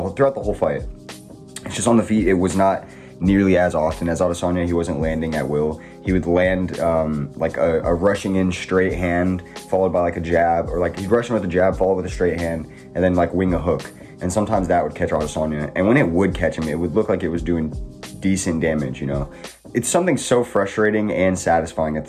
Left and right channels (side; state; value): both; identical; correlation 1.00